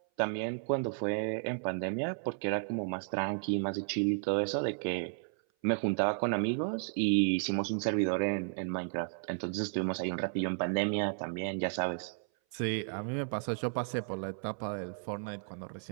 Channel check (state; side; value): silent; left; 55 dB below the other